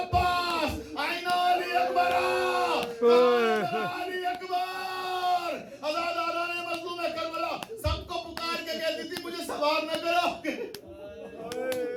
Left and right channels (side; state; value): both; identical; correlation 1.00